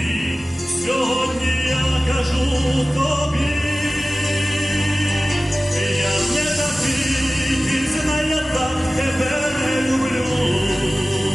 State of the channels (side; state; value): both; normal; correlation 0.96